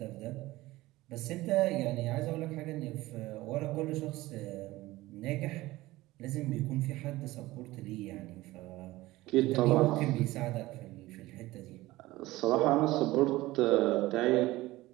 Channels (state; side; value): quieter; left; 18.3 dB